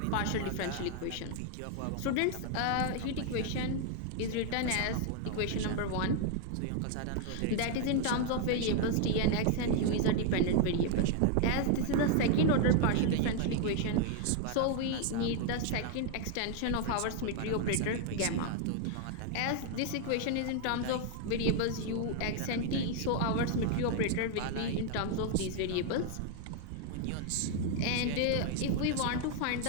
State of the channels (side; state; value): both; different; correlation 0.00